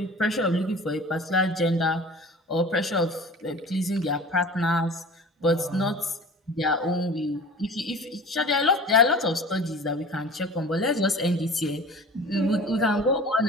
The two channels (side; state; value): both; normal; correlation 0.40